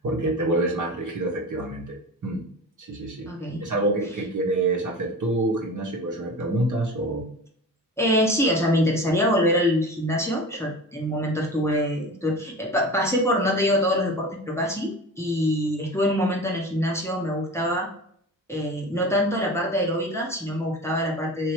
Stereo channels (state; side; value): normal; both; correlation 0.33